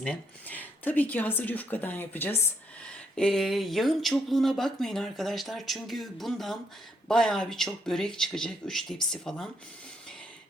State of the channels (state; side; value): normal; both; correlation 0.75